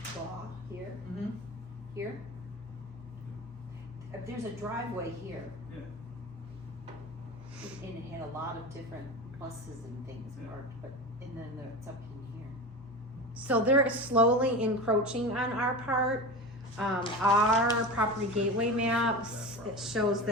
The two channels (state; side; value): normal; both; correlation 0.28